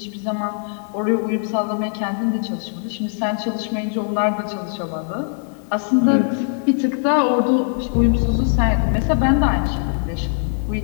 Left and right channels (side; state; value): right; silent; 65 dB below the other